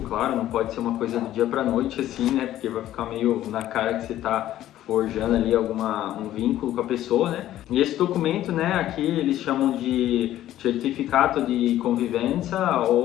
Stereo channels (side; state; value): right; quieter; 13.2 dB